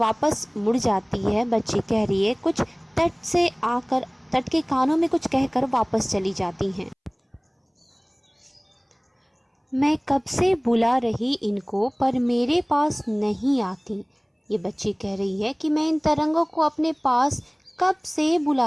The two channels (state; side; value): identical; both; correlation 1.00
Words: मुड़ जाती है, बच्ची कह रही है कुछ तट से आकर तट के कानों में कुछ कहकर वापस चली जाती हैं। मैं कब से बुला रही इनको पर मेरे पास नहीं आती। ये बच्ची कह रही है कि मैं इन तरंगों को अपने पास कब से